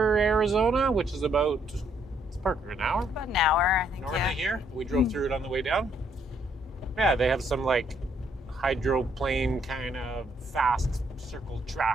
Arizona, which is about, it's Parker, an hour? About an hour, I think. North Yeah. of here. We drove through it on the way down. Yeah, they have some like hydroplane kind of fast circle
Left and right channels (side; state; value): both; normal; correlation 0.70